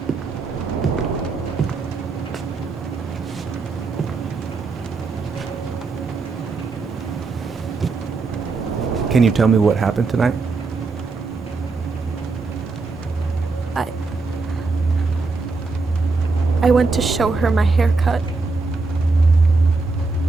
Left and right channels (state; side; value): quieter; left; 4.0 dB